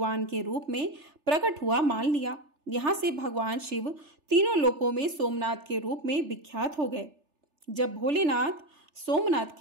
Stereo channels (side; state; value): left; late; 3.4 ms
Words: के रूप में प्रकट हुआ मान लिया। यहाँ से भगवान शिव तीनों लोकों में सोमनाथ के रूप में विख्यात हो गए। जब भोलेनाथ सोमनाथ